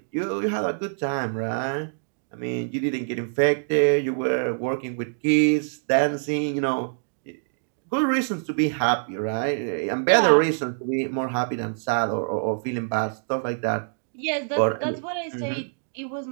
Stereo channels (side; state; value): left; silent; digital silence